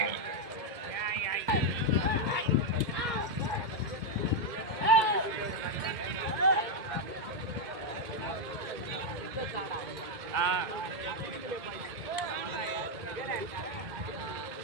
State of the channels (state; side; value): late; left; 2.0 ms